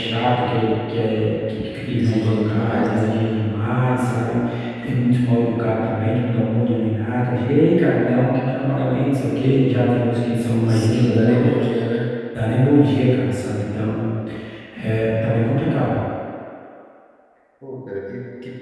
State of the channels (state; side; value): identical; both; correlation 1.00